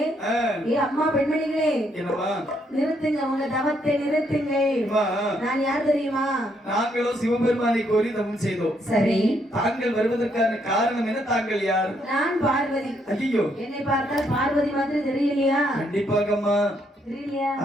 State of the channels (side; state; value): both; normal; correlation 0.73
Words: ஏ அம்மா பெண்மணிகளே, என்னம்மா நிறுத்துங்க, உங்க தவத்தை நிறுத்துங்கள். நான் யார் தெரியுமா? நாங்களோ சிவபெருமானை கோரி தவம் செய்தோம். சரி தாங்கள் வருவதற்கான காரணம் என்ன? தாங்கள் யார்? நான் பார்வதி. ஐயோ என்னை பார்த்தால் பார்வதி மாதிரி தெரியலையா? கண்டிப்பாகம்மா தெரியலையா?